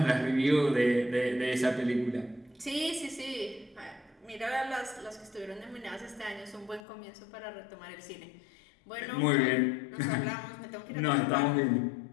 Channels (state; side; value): drops out; right; at 6.8 s